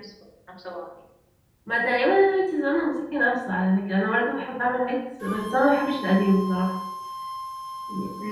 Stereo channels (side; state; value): both; identical; correlation 1.00